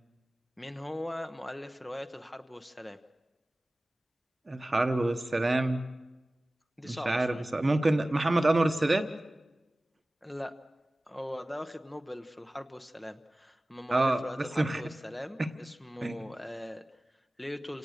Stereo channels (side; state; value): both; normal; correlation 0.97